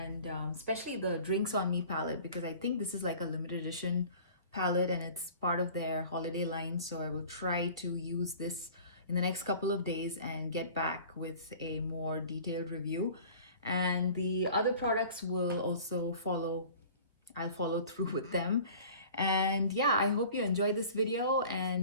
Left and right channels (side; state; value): both; inverted; correlation -0.45